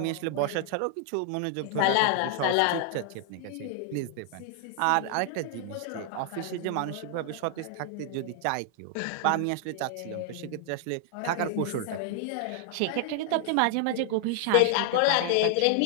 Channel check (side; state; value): both; different; correlation 0.00